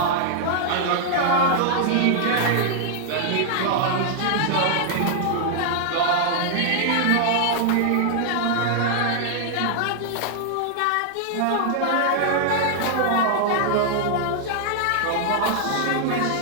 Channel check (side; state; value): both; different; correlation -0.01